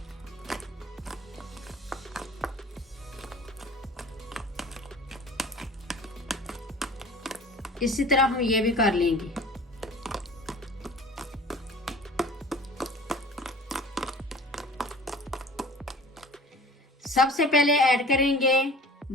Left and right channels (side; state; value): both; normal; correlation 0.44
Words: इसी तरह हम ये भी कर लेंगे। सबसे पहले ऐड करेंगे